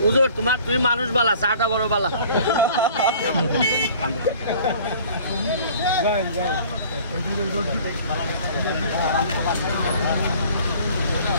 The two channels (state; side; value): inverted; both; correlation -0.50